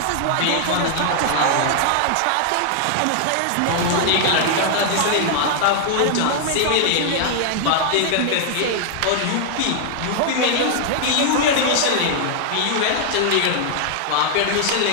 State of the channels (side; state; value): both; different; correlation -0.01